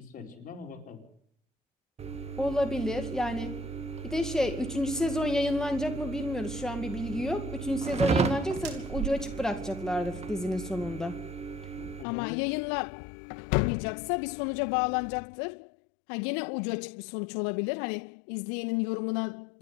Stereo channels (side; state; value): right; drops out; at 12.1 s